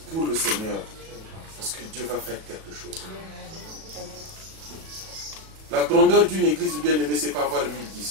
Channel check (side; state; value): left; late; 37 ms